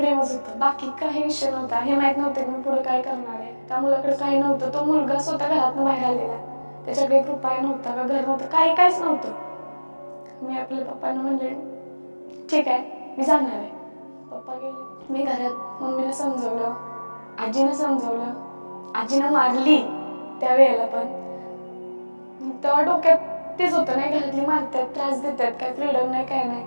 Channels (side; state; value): both; inverted; correlation -1.00